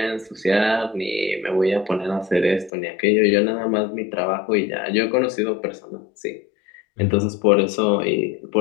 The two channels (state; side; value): drops out; right; at 2.7 s